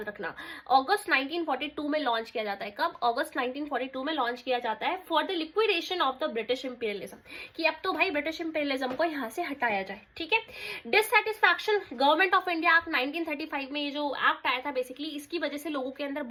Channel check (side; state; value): both; identical; correlation 1.00